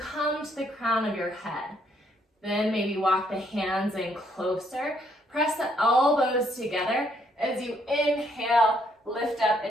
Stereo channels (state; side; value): normal; both; correlation 0.70